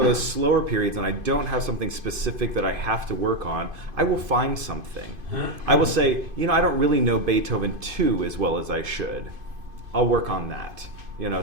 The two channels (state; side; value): late; left; 2.5 ms